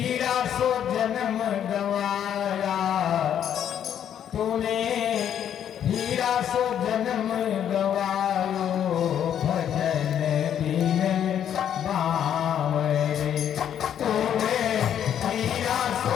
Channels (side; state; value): right; quieter; 9.6 dB